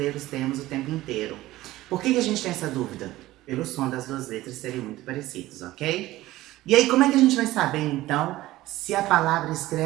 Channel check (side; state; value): left; quieter; 16.7 dB